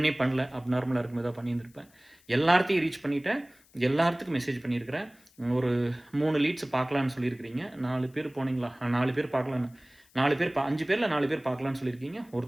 பண்ணல, அப்நார்மலாக இருக்கும் ஏதாவது பண்ணியிருந்திருப்பேன். எல்லாத்தையும் ரீச் பண்ணிவிட்டேன். எல்லாத்துக்கும் மெசேஜ் பண்ணியிருக்கிறேன். ஒரு 3 லீட்ஸ் பார்க்கலான்னு சொல்லியிருக்கிறீங்க. 4 பேர் போனீங்களா? 4 பேர் பார்க்கலான்னு 4 பேர் 5 பேரில் 4 பேர் பார்க்கலான்னு சொல்லியிருக்கீங்க.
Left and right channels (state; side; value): noise; left; hiss, 30 dB below the sound